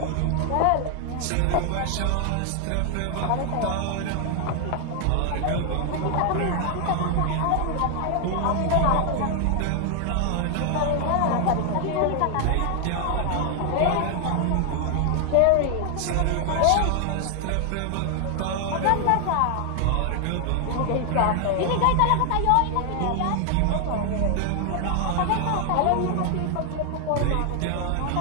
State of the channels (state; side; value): different; both; correlation 0.00